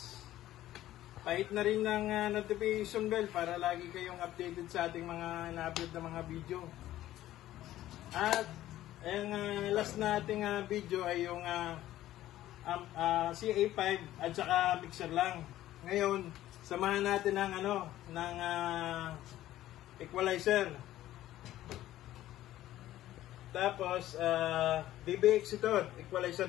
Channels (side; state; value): right; quieter; 14.0 dB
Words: pahit na rin ng notification bell para lagi kayong updated sa ating mga na-upload na mga video. At ang last na ating video ay yung CA5 at saka mixer lang. Ngayon, samahan natin ng equalizer. Tapos DBX ito, equalizer